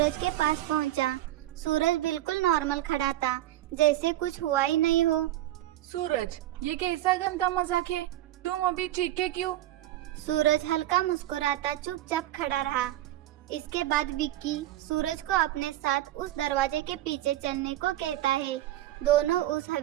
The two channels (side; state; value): left; quieter; 14.4 dB